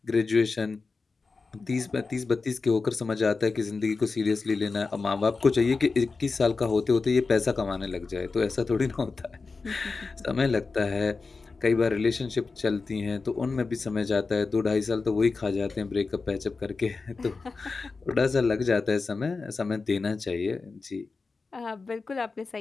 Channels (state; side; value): quieter; right; 4.2 dB